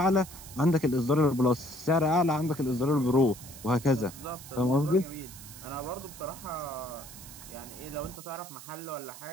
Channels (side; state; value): right; noise; hiss, 15 dB below the sound